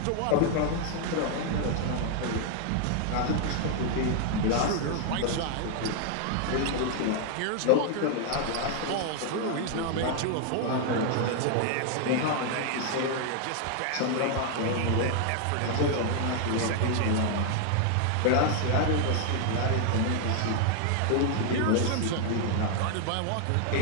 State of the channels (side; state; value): both; different; correlation 0.00